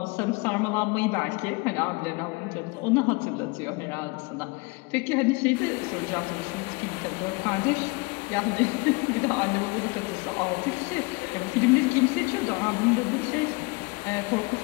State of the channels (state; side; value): quieter; right; 27.6 dB